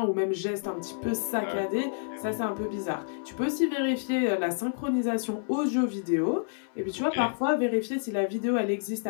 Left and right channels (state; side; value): silent; right; 59 dB below the other